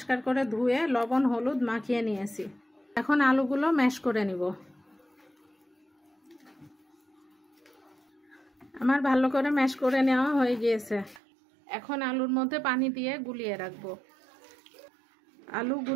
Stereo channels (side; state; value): left; drops out; at 11.2 s